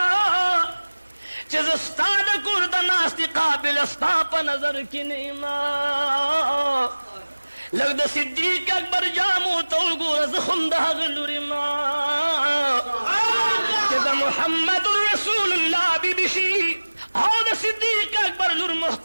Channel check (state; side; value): inverted; both; correlation -1.00